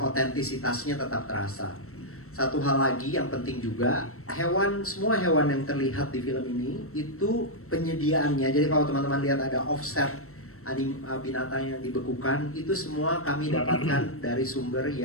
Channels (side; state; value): right; late; 0.63 ms